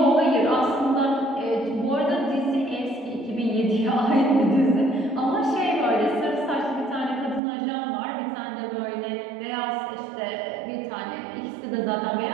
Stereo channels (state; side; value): drops out; left; at 7.4 s